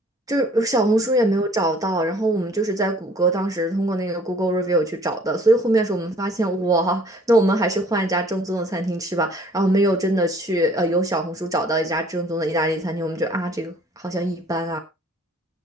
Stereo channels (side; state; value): both; normal; correlation 0.56